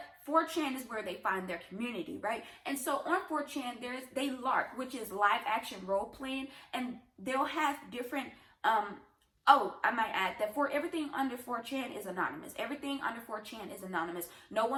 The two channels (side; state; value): both; identical; correlation 1.00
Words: 4chan is where they find their community, right? And so on 4chan, they LARP, which is live action role playing, and they'll have different oh, I might add that for everything under 4chan is anonymous. Everything under 4chan is anonymous. No